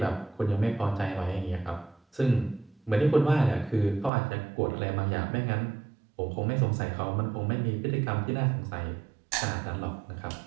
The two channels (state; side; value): drops out; left; at 4.1 s